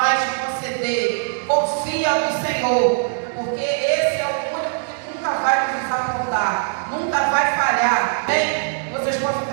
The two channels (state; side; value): silent; left; digital silence